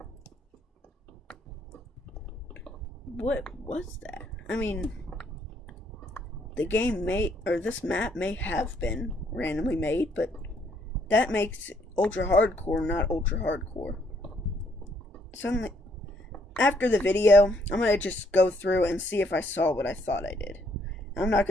What was that? I mean, the game may, or this map may have been randomly made, but that makes ultra hardcore not ultra hardcore. Suddenly, after the video, I'm going to just go through and see if I saw what I thought I did. I'm not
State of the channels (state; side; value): normal; both; correlation 0.69